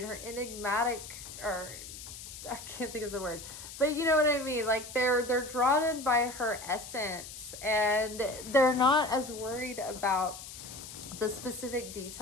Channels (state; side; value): noise; left; hiss, 12 dB below the sound